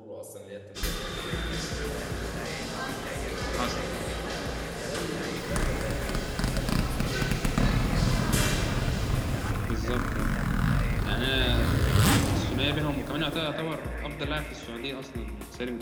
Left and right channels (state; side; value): identical; both; correlation 1.00